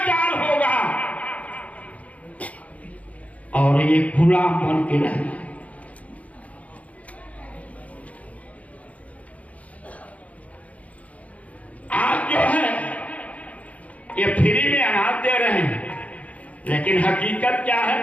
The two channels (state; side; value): late; right; 0.068 ms